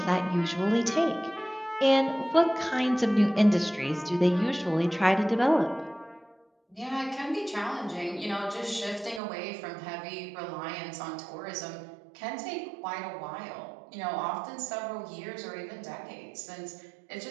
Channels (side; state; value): left; drops out; at 9.2 s